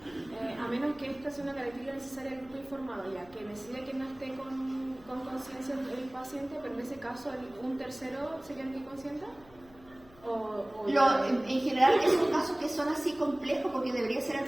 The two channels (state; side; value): noise; left; hum, 24 dB below the sound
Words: a menos que esta sea una característica necesaria del grupo informado, ya que decide que no esté con conciencia el paciente, pero en ese caso un tercero sería el que consienta. En general esos casos que son así complejos, porque debería ser el